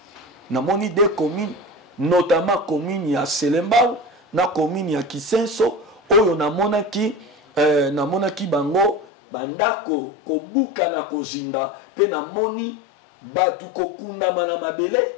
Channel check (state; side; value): drops out; right; at 9.1 s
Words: na moni deux communes notamment commune ya Selembao na commune ya Kisenso oyo na monaki bango bandako kobuka na kozinda pe na moni batu kokundama na mabele